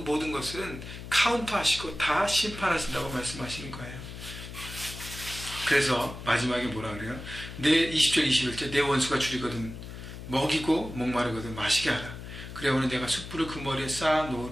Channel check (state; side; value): noise; left; hum, 11 dB below the sound